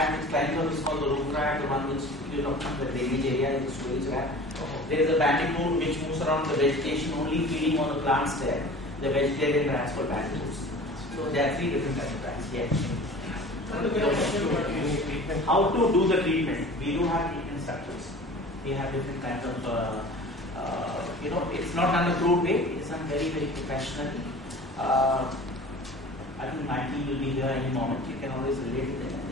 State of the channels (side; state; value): both; normal; correlation 0.42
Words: which climbs up is called the roof rat, the one which from the drainage area is the storage rat. There is a bandicoot which moves around the vegetation, only feeding on the plants there. The vegetarian rats called bandicoots. So there are three different kinds of rats. Yes. How to do the treatment? We do have treatment structures. We have different kinds of, it's not done the crude way. It's done very, very professionally. I think my team will be here any moment. You can always relate to them and